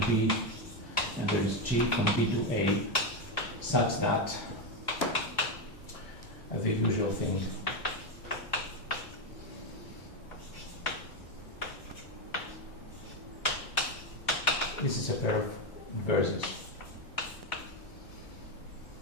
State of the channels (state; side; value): late; right; 2.0 ms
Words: B and there is G from B to A, such that the usual thing this is a pair of inverses.